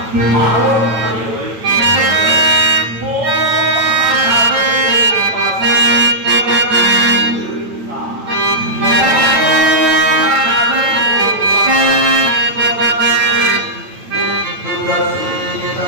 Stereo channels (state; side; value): late; left; 9.0 ms